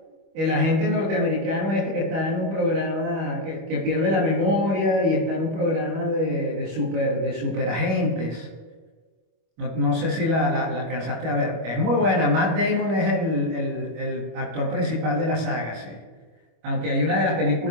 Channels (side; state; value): left; late; 25 ms